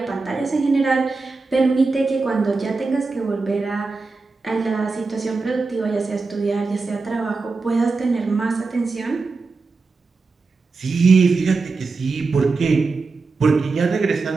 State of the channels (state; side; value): quieter; left; 4.1 dB